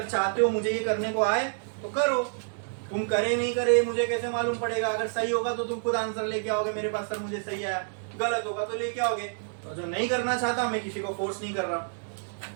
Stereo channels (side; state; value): left; silent; digital silence